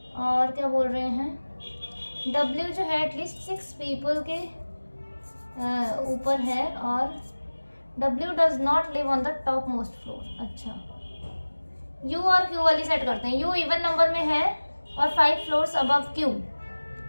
और क्या बोल रहे हैं, W जो है एटलीस्ट 6 पीपल के ऊपर है, और W does not live on the top most floor. अच्छा, U और Q वाली सेट करते हैं. U इवन नंबर में है और 5 फ्लोर्स अबव Q.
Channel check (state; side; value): inverted; both; correlation -1.00